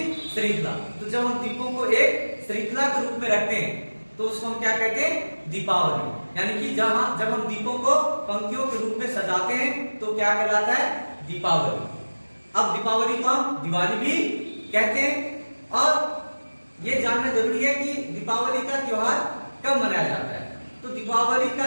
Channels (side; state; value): both; inverted; correlation -1.00